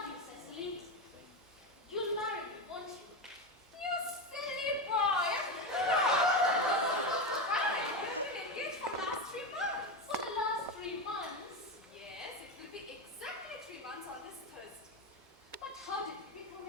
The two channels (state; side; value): normal; both; correlation 0.15